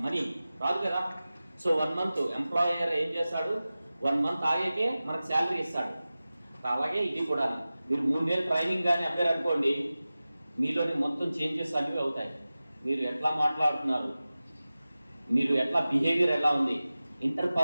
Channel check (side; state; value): both; inverted; correlation -0.96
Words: మనీ రాదు కదా. సో 1 మంత్ ఎంప్లాయర్ ఏం చేస్తాడు, 1 మంత్ ఆగాకే మనకు శాలరీ ఇస్తాడు. అలాగే ఇది కూడా మీరు 3 నెలలు ట్రైనింగ్ కానీ అవ్వారనుకోండి, మీలోని మొత్తం చేంజెస్ అనేవి అవుతాయి. మీరు ఎట్లా మాట్లాడుతున్నారు, మీరు ఎట్లా బిహేవియర్ ఎలా ఉంది,